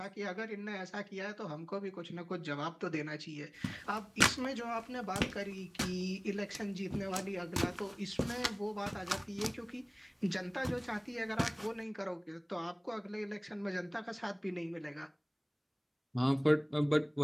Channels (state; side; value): identical; both; correlation 1.00